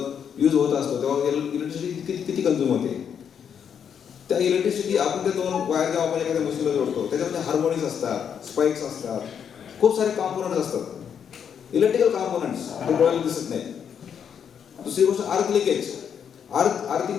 यूज होत असतो तेव्हा इलेक्ट्रिसिटी किती कन्झ्युम होते. त्या इलेक्ट्रिसिटी आपण त्या 2 वायर जेव्हा आपण एखाद्या मशीनला जोडतो त्याच्यामध्ये हार्मोनिक्स असतात, स्पाइक्स असतात, खूप सारे कॉम्पोनंट्स असतात, इलेक्ट्रिकल कॉम्पोनंट्स, ते डोळ्याला दिसत नाही. दुसरी गोष्ट अर्थ लिकेज. आर्थिंग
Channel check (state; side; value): quieter; right; 7.8 dB